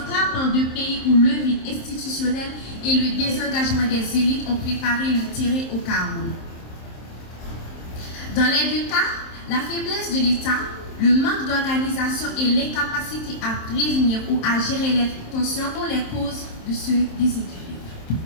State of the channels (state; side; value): late; right; 27 ms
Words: frappant de pays où le vide institutionnel et le désengagement des élites ont préparé le terrain au chaos. Dans les deux cas, la faiblesse de l'État, le manque d'organisation et l'incapacité à prévenir ou à gérer les tensions sont les causes de ce déséquilibre.